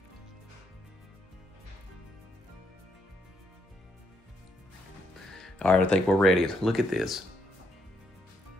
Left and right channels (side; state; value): both; normal; correlation 0.75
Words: All right, I think we're ready. Look at this.